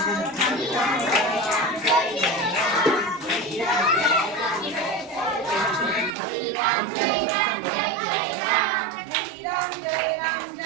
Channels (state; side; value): drops out; left; at 6.2 s